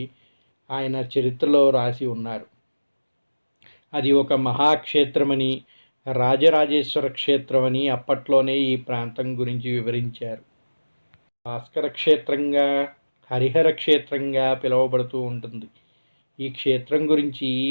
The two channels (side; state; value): both; inverted; correlation -1.00